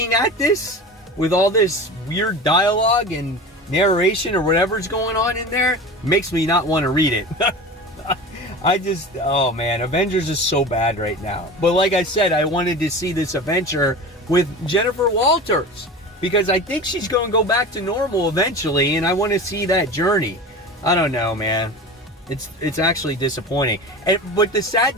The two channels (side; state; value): both; normal; correlation 0.32